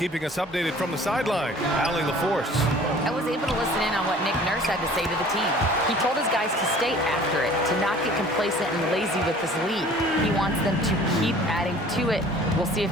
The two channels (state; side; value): normal; both; correlation 0.49